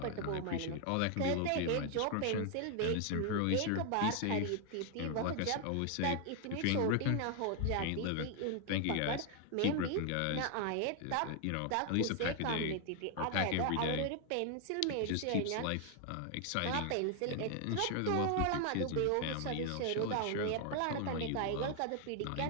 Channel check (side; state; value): both; different; correlation 0.00